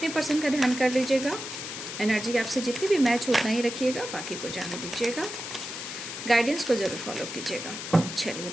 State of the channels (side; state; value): left; noise; hiss, 8 dB below the sound